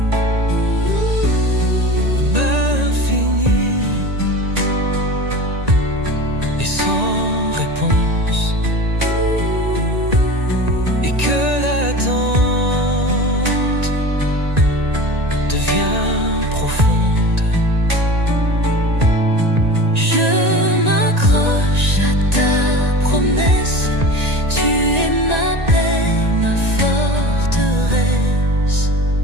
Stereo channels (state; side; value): late; left; 1.9 ms